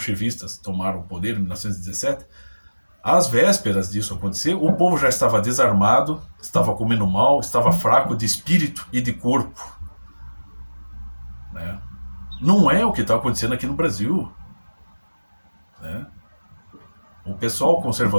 tomaram o poder em 1917, às vésperas disso acontecer, o povo já estava desarmado, estava comendo mal, estava fraco de espírito e de corpo. Né? Não é o que está acontecendo aqui no Brasil. Né? O pessoal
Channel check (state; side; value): inverted; both; correlation -1.00